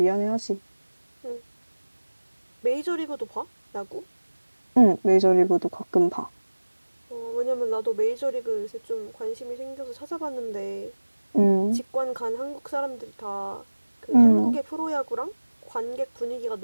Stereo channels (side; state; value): both; inverted; correlation -1.00